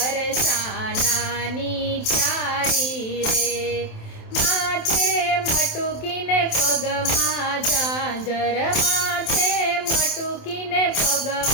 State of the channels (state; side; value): late; right; 27 ms